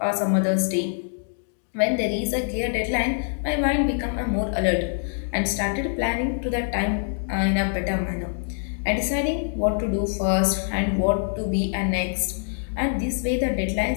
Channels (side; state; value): right; silent; digital silence